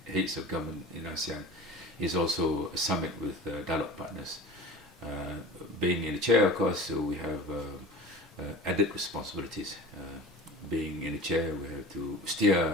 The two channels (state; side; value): normal; both; correlation 0.37